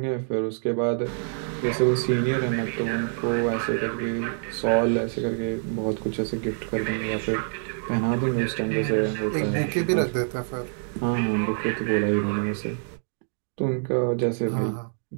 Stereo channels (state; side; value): silent; left; digital silence